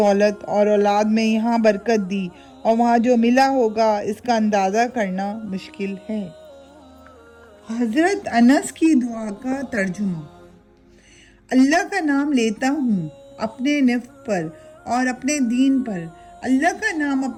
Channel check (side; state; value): both; identical; correlation 1.00